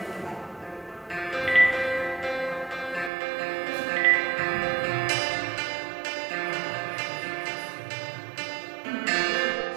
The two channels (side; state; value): left; drops out; at 3.1 s